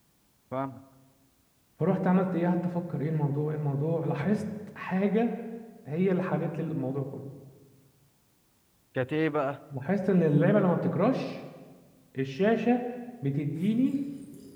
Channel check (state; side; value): identical; both; correlation 1.00